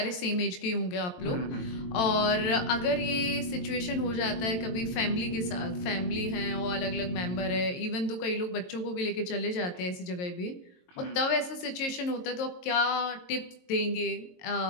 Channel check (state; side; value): late; right; 22 ms